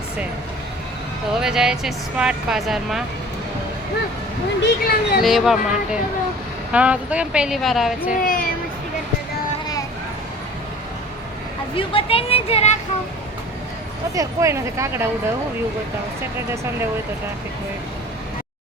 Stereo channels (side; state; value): both; normal; correlation 0.45